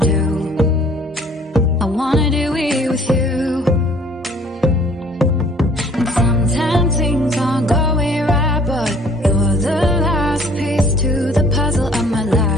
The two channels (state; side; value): normal; both; correlation 0.55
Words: I wanna do it with you. And sometimes things aren't going right, but you're the last piece to the puzzle of my